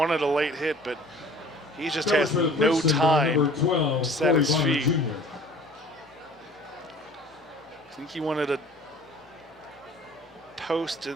a late hit, but he just has no time to set his feet. I think he wanted a post and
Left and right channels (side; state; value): both; normal; correlation 0.48